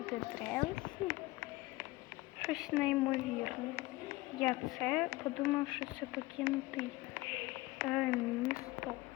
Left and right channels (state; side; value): quieter; right; 20.3 dB